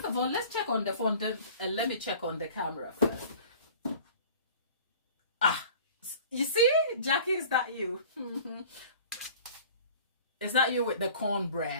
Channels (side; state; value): both; inverted; correlation -0.45